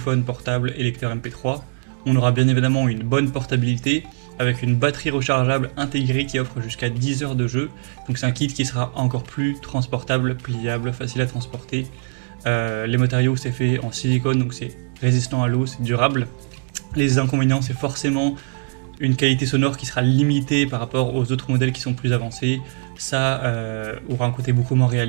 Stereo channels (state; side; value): quieter; left; 38.3 dB